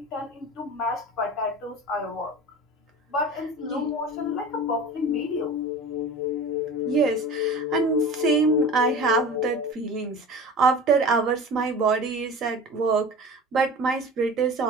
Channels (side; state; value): both; normal; correlation 0.36